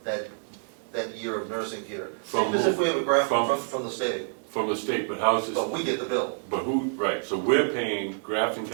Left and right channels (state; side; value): silent; left; digital silence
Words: year of nursing care. From Same as if we have a Grafton from- from the state, from the state, but how's this, but we get the bill but who, right, so we're paying Grafton